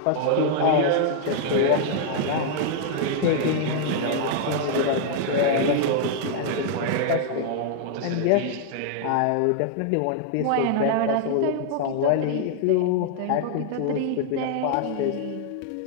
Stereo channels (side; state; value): both; different; correlation -0.01